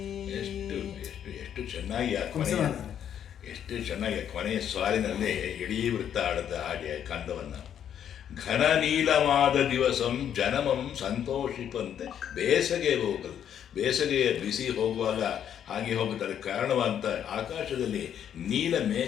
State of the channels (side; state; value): right; quieter; 9.4 dB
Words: ಎಷ್ಟು ಚೆನ್ನಾಗಿ ಕೊನೆಯ ಸಾಲಿನಲ್ಲಿ ಇಡೀ ವೃತ್ತ ಆಡುತ್ತ ಹಾಗೆ ಕಂದವನ್ನು. ಘನ ನೀಲವಾದ ದಿವಸಂ ಜನಮಂ ಸಂತೋಷಿಪಂತೆ, ಬೇಸಗೆಯ ಬಿಸಿ ಹೋಗುವಾಗ ಹಾಗೆ ಹೋಗುತ್ತಾರೆ. ಕಾರಣವಂತ ಆಕಾಶದಲ್ಲಿ ನೀಲ